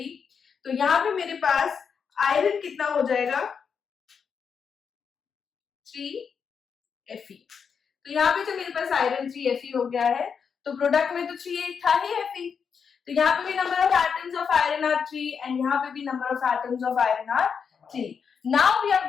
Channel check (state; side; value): quieter; right; 6.4 dB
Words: तो यहाँ पे मेरे पास आयरन कितना हो जाएगा, 3Fe। तो यहाँ पे जो मेरे पास आयरन 3Fe हो गया है, तो प्रोडक्ट में तो 3 था ही Fe, तो यहाँ पे भी number of atoms of iron are 3 and यहाँ पे भी number of atoms of iron are 3। Now we are